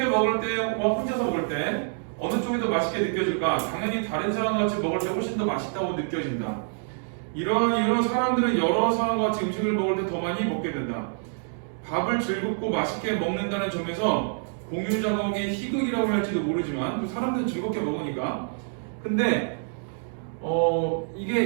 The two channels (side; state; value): left; silent; 60 dB below the other